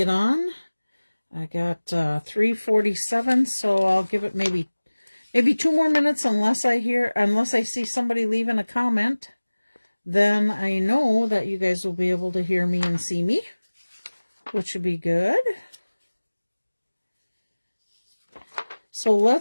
on. I got 3:47, so I'll give it maybe 2 more minutes unless I see somebody leaving a comment. Then I know that you guys will be able to hear me and see me, which would be good. So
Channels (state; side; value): inverted; both; correlation -1.00